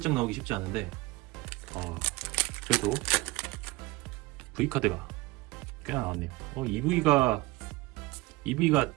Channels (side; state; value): left; quieter; 21.1 dB